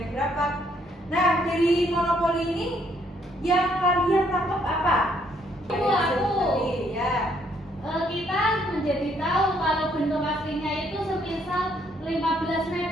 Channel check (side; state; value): both; normal; correlation 0.69